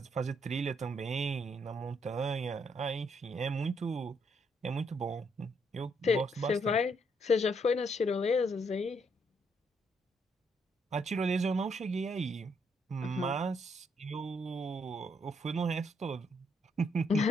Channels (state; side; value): normal; both; correlation 0.73